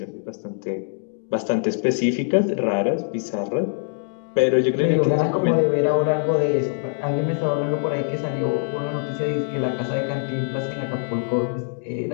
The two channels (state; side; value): silent; right; digital silence